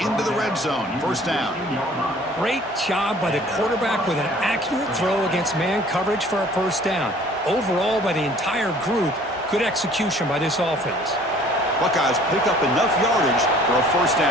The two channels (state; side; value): normal; both; correlation 0.53